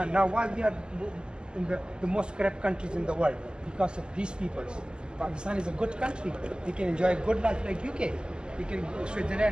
now, why we are in the most corrupt countries in the world, because of these people. Pakistan is a good country. We can enjoy a good life like UK. We can,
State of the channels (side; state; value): left; late; 0.047 ms